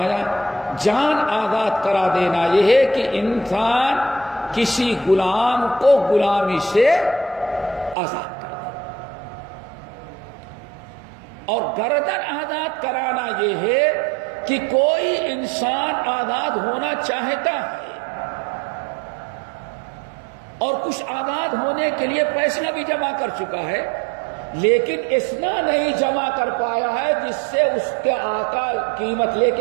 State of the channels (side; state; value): left; drops out; at 8.0 s